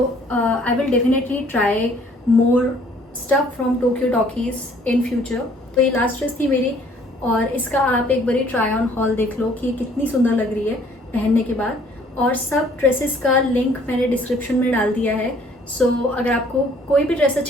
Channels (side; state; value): both; normal; correlation 0.59